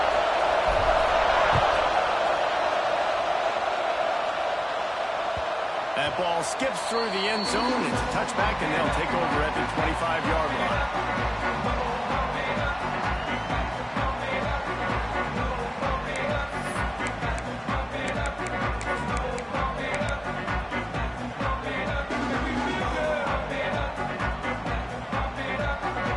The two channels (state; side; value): identical; both; correlation 1.00